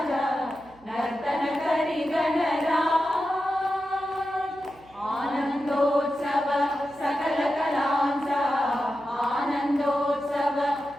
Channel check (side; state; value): right; noise; hum, 27 dB below the sound